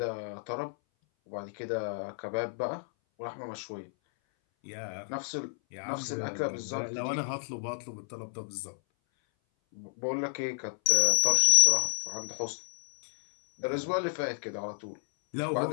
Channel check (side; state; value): right; silent; 57 dB below the other